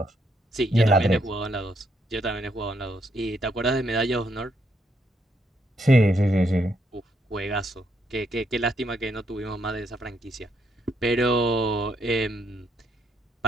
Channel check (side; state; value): both; normal; correlation 0.75